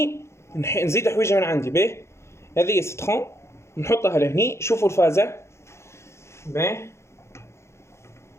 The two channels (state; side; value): late; right; 0.13 ms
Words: نزيد حويجه من عندي. باهي هذه ستخون نحطها لهني. شوفوا الفازه. باهي